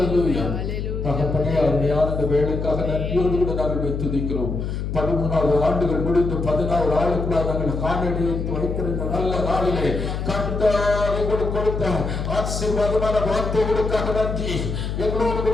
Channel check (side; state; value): left; noise; hum, 3 dB below the sound